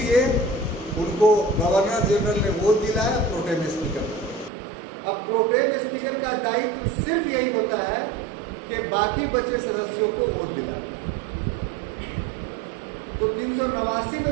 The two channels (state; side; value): drops out; left; at 4.5 s